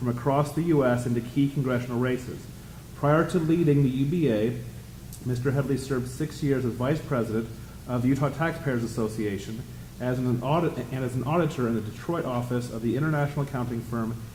across the U.S. into key congressional races. Prior to leading the UBA, Mr. Headley served 6 years as Vice President of the Utah Taxpayers Association as an auditor in the Detroit office of the international accounting firm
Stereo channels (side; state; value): both; identical; correlation 1.00